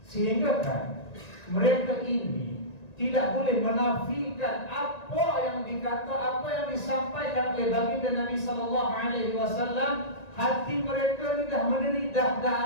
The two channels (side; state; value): right; late; 1.9 ms